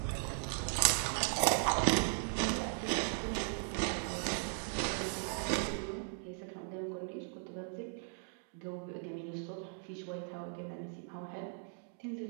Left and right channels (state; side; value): silent; left; 53 dB below the other